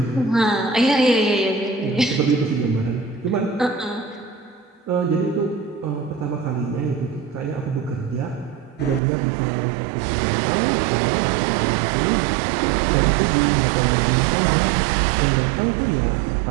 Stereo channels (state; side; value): drops out; left; at 9.0 s